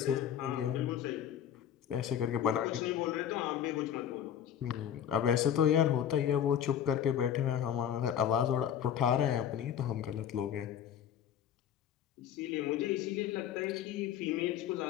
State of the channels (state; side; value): quieter; right; 9.5 dB